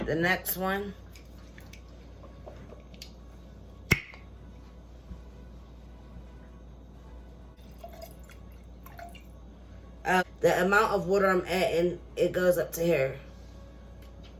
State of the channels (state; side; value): identical; both; correlation 1.00